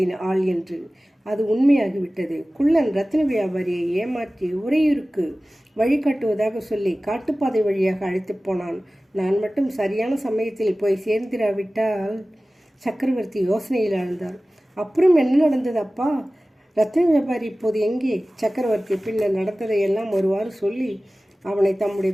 ஆள் என்று. அது உண்மையாகிவிட்டது. குள்ளன் ரத்தின வியாபாரியை ஏமாற்றி உறையூருக்கு வழிகாட்டுவதாக சொல்லி காட்டுப்பாதை வழியாக அழைத்து போனான். நான் மட்டும் சரியான சமயத்தில் போய் சேர்ந்திராவிட்டால்... சக்கரவர்த்தி யோசனையில் ஆழ்ந்தார். அப்புறம் என்ன நடந்தது அப்பா? ரத்தின வியாபாரி இப்போது எங்கே? சக்கரவர்த்தி பின்னர் நடந்ததையெல்லாம் ஒருவாறு சொல்லி அவனை தம்முடைய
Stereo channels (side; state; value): both; normal; correlation 0.97